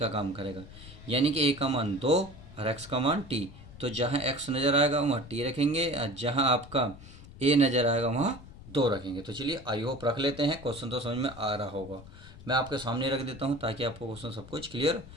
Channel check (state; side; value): noise; left; rumble, 17 dB below the sound